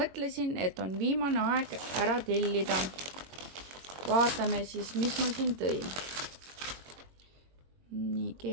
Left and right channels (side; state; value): left; late; 22 ms